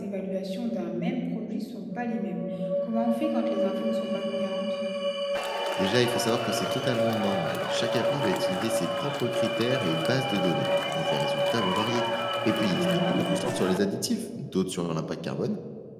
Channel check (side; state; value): both; identical; correlation 1.00